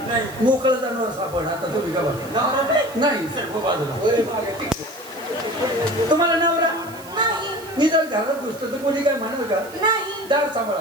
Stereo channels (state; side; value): noise; right; hiss, 19 dB below the sound